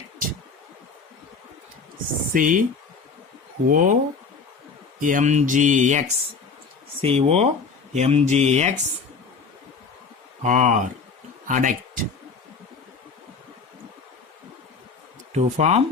COMgX. COMgX or adduct. To form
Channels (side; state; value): right; quieter; 5.0 dB